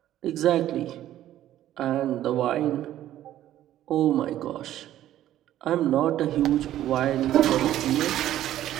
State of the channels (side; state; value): left; quieter; 12.8 dB